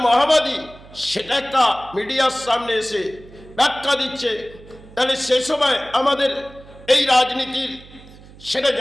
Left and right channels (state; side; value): noise; right; hum, 21 dB below the sound